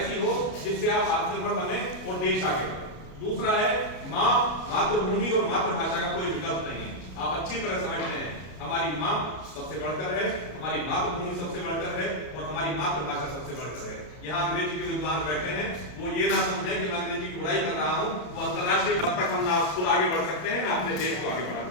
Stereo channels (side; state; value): right; late; 33 ms